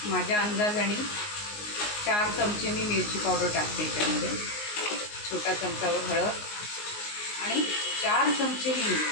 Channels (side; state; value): right; late; 19 ms